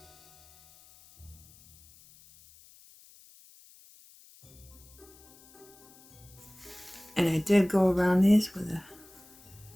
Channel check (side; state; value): left; noise; hiss, 25 dB below the sound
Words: And I did go around these with a